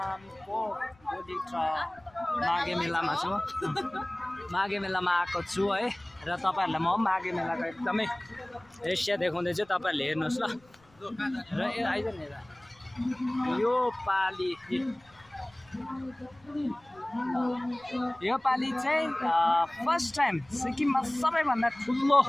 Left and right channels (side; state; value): left; noise; rumble, 30 dB below the sound